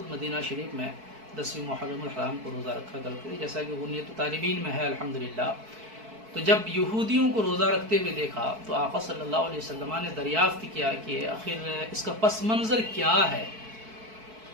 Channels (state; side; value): late; left; 4.6 ms